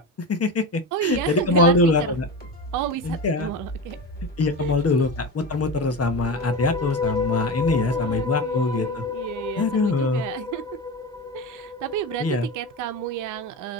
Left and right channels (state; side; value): normal; both; correlation 0.24